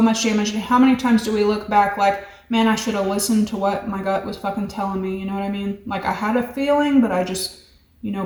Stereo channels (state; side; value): identical; both; correlation 1.00